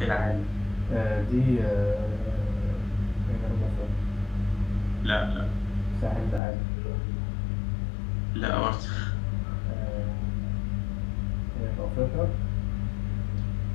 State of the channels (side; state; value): right; drops out; at 6.4 s